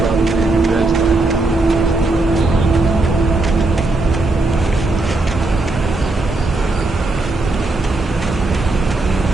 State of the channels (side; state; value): left; quieter; 3.1 dB